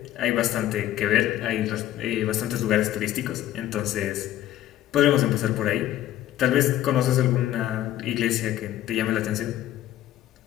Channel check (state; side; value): quieter; right; 13.0 dB